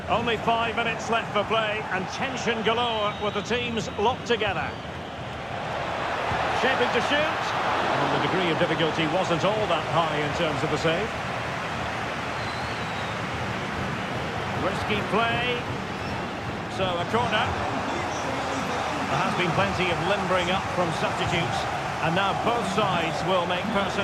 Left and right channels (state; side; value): identical; both; correlation 1.00